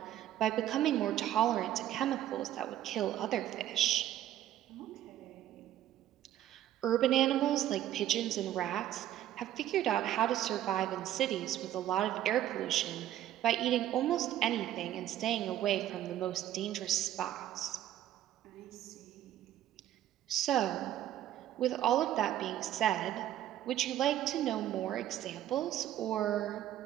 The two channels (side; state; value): left; quieter; 12.4 dB